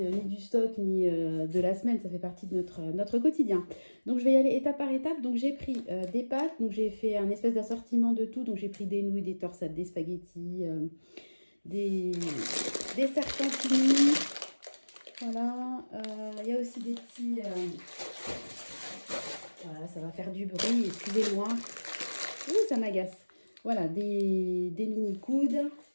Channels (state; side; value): inverted; both; correlation -1.00